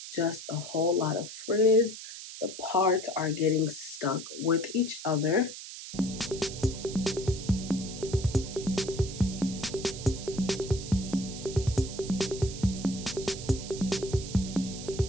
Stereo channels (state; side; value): noise; right; hiss, 11 dB below the sound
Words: Just a whole lot of frizz. The parts are getting stuck with each other.